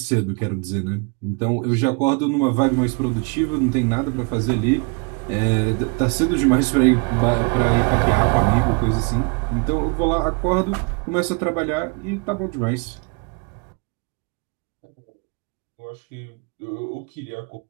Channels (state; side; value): quieter; left; 33.5 dB